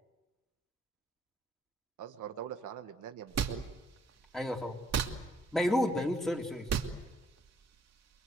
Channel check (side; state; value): both; normal; correlation 0.66